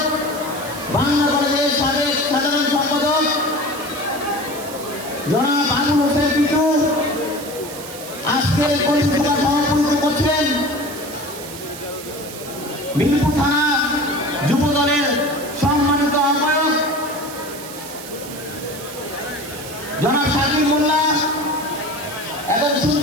বাংলা কলেজের সাবেক সাধারণ সম্পাদক জনাব আবুল হোসেন পিটু। আজকের কর্মী সভা সভাপতিত্ব করছেন মিরপুর থানা যুবদলের সম্মানিত আহ্বায়ক জনাব শাকিব মোল্লা এবং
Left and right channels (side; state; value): right; noise; hiss, 13 dB below the sound